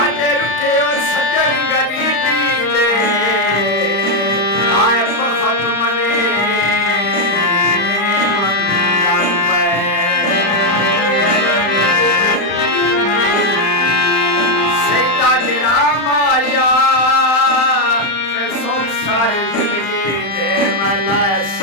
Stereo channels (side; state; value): right; late; 35 ms